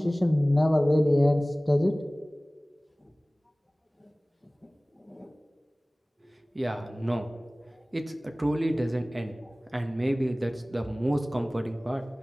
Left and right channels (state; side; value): normal; both; correlation 0.98